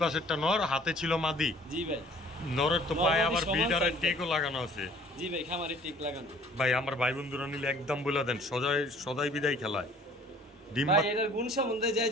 পাশেরটা নর, হাতে ছিল মাদি। জি ভাই, নরের তো পায়ে আবার বিডারের টেকও লাগানো আছে। জি ভাই, খামারে টেক লাগানো। ভাই আমার ভাই বন্ধুরা নিলে একদম বলে দেন, সদাই বিদায় খেলায়। ভাই এটার গুণ সম্বন্ধে যাই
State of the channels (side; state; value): both; normal; correlation 0.53